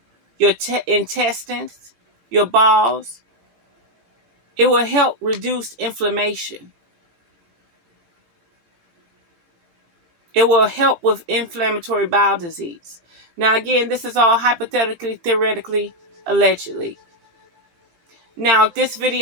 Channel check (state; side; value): late; left; 18 ms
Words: your intestines, your balls. It will help reduce inflammation. It will help with inflammatory bowel disease. Now, again, this is all hypothetically, theoretically, allegedly. Now, if this